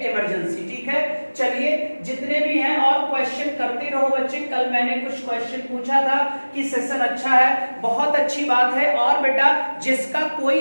इमरजेंसी। ठीक है, चलिए जितने भी हैं और क्वेश्चन करते रहो बच्चे। कल मैंने कुछ क्वेश्चन पूछा था कि सेशन अच्छा है, बहुत अच्छी बात है, और बेटा जिसका कोई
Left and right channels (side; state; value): both; inverted; correlation -1.00